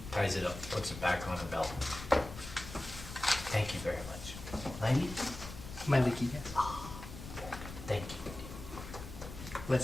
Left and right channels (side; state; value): left; noise; rumble, 11 dB below the sound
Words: ties it up, puts it back on her belt. Thank you very much. Lady? My Licky, yes. Thank you.